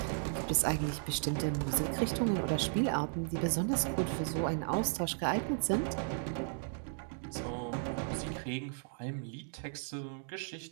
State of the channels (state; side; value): silent; left; digital silence